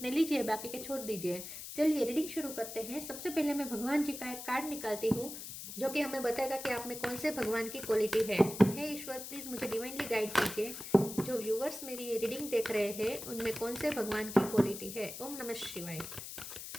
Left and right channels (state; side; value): noise; left; hiss, 10 dB below the sound